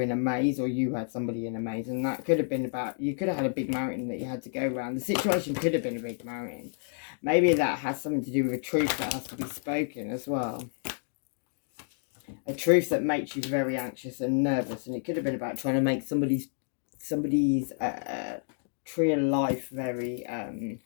in a maze, or you had somebody in a maze. And that could have been about, you could have had a big mountain that you had to go around. The situation could have been a big mountain. Maybe that has something to do with a truth that has to be spoken as well. A truth that makes you very anxious and nervous. And it could have been about trying to make somebody's tree of life very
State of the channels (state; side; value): silent; right; digital silence